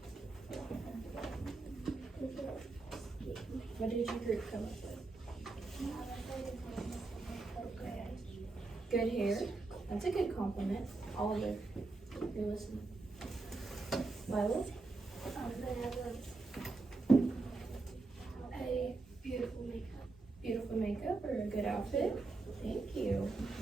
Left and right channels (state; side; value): quieter; left; 3.6 dB